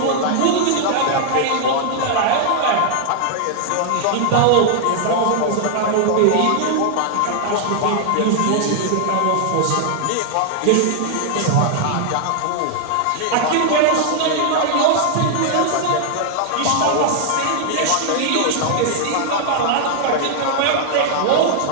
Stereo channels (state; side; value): different; both; correlation 0.00